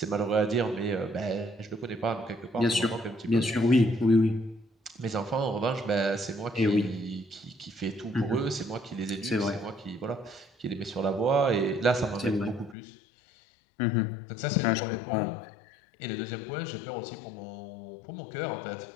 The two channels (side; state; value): right; drops out; at 12.8 s